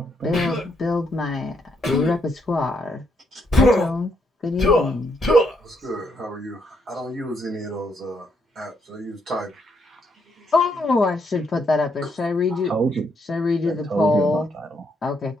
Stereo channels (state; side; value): normal; both; correlation 0.75